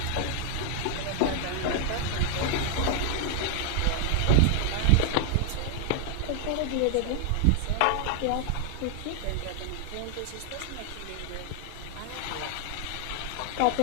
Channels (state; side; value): different; both; correlation 0.00